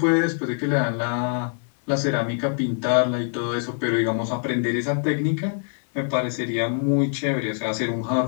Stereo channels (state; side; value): silent; right; 60 dB below the other